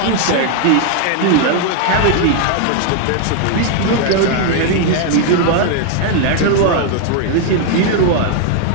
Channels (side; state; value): both; different; correlation 0.00